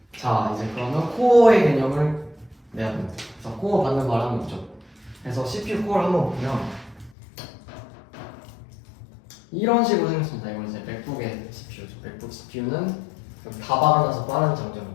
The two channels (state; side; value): drops out; right; at 7.2 s